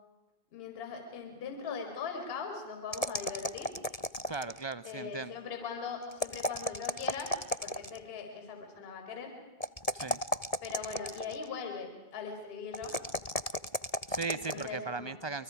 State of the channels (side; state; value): right; late; 1.7 ms